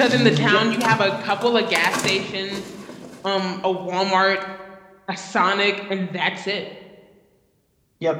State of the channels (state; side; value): identical; both; correlation 1.00